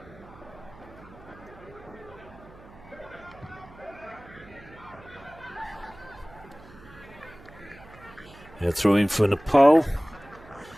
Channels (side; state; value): right; noise; hum, 21 dB below the sound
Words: Yeah, throwing for Nepal.